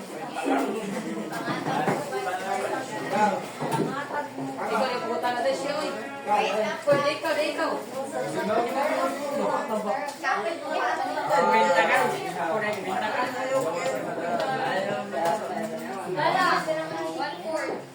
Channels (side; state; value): both; identical; correlation 1.00